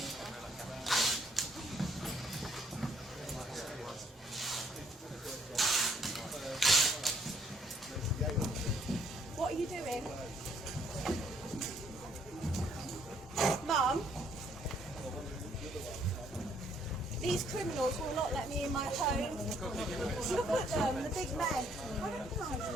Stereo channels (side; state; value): both; normal; correlation 0.66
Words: What are you doing? Mum? These criminals will not let me in my home. Look at them, the big men. I recognise